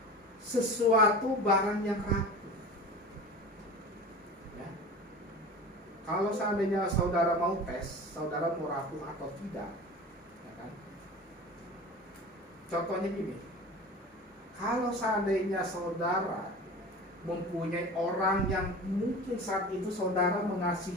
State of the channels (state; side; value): normal; both; correlation 0.35